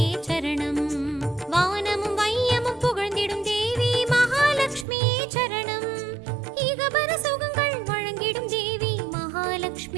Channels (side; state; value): left; drops out; at 4.9 s